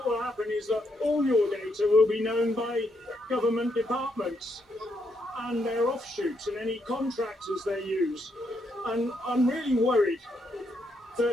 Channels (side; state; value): both; normal; correlation 0.77